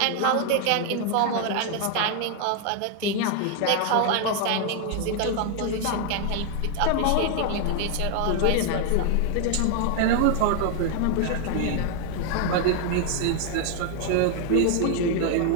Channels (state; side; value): different; both; correlation 0.00